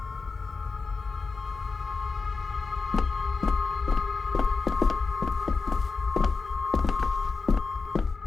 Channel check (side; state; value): right; quieter; 4.4 dB